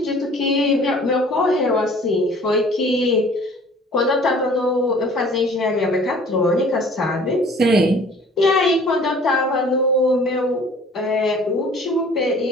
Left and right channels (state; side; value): normal; both; correlation 0.51